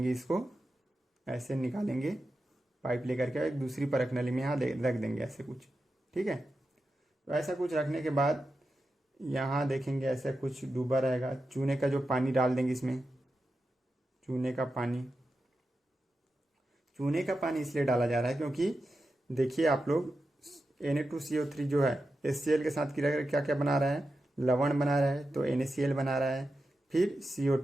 इसको ऐसे निकालेंगे, पाइप लेकर के एक दूसरी परख नली में यहाँ रख देंगे, ऐसे कुछ, ठीक है। तो ऐसा कुछ रखने के बाद यहाँ देखेंगे ऐसा कुछ डूबा रहेगा, चूने का जो पानी डाल देंगे इसमें, चूने का पानी। चूने का पानी इसलिए डाला जा रहा है क्योंकि देखिए आप लोग, Na2CO3 जो है HCl के साथ क्रिया करके क्या क्या बना रहा है? लवण बना रहा है, तो NaCl बना रहा है, फिर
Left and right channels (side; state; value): both; normal; correlation 0.90